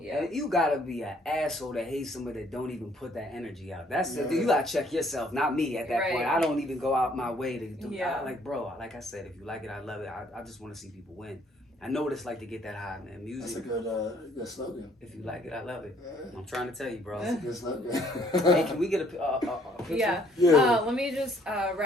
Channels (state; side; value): normal; both; correlation 0.63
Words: Yeah, you gotta be an asshole that hates somebody that don't even put that energy out. That's you gotta check yourself, not me at that point. I don't even go out my way to do. Like, bro, like I said, if you like it, I love it. I just want to see people win. I know what it's like to get that high, man. Music. That's a good slogan. If you like it, I love it. I'm trying to tell you, bro. That's a good slogan. Hey, can we get a picture? Yeah. Let me just